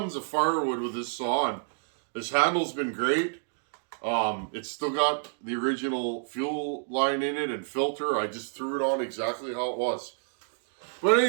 of firewood with this saw, and this handle's been great. It's still got the original fuel line in it and filter. I just threw it on exactly how it was. But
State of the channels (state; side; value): silent; left; digital silence